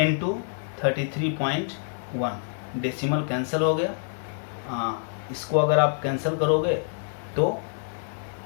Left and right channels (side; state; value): right; silent; digital silence